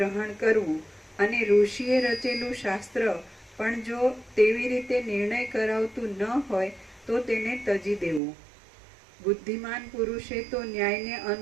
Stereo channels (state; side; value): drops out; left; at 8.2 s